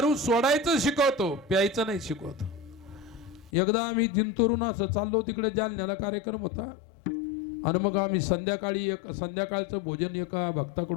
सोडायचं शिकवतो, प्यायचं नाही शिकवतो. एकदा आम्ही जिंतूरून असं चाललो, तिकडे जालन्याला कार्यक्रम होता. आणि मग आम्ही संध्याकाळचं भोजन एका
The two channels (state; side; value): drops out; right; at 3.5 s